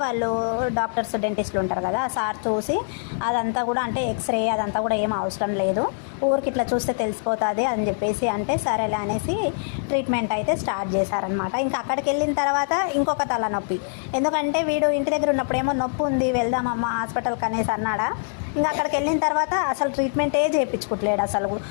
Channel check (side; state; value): right; silent; digital silence